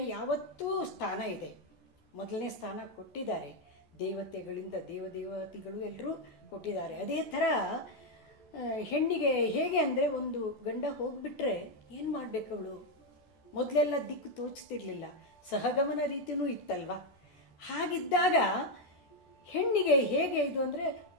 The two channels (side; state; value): right; late; 14 ms